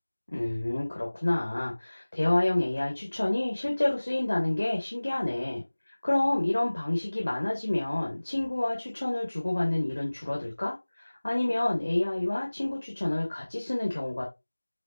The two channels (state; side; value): inverted; both; correlation -1.00